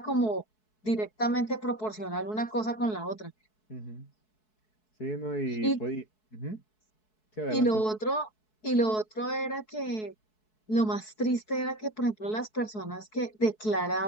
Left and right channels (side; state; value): right; late; 4.7 ms